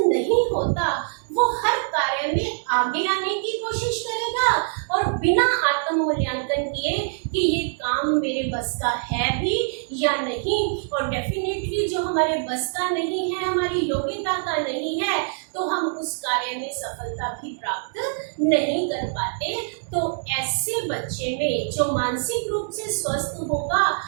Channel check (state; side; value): silent; left; digital silence